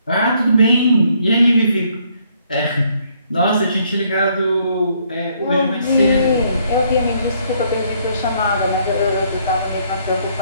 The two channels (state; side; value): inverted; both; correlation -0.68